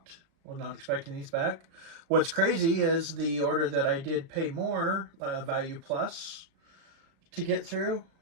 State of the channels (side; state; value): left; late; 36 ms